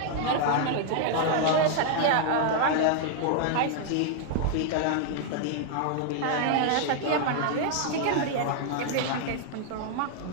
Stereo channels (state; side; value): different; both; correlation 0.00